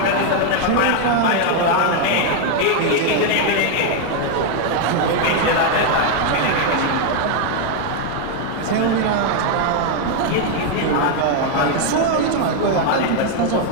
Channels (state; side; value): different; both; correlation 0.01